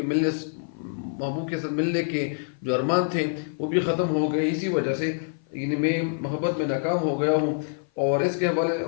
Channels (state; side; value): silent; right; 57 dB below the other